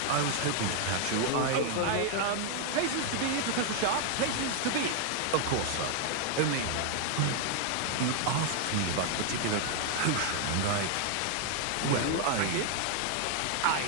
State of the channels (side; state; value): both; different; correlation 0.00